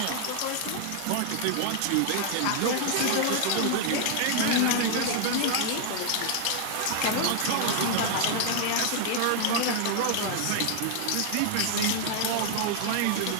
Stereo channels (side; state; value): both; different; correlation 0.00